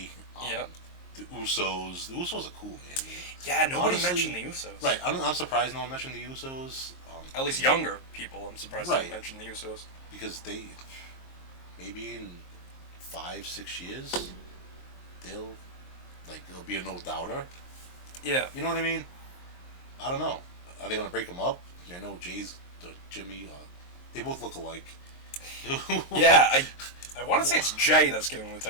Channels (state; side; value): late; right; 23 ms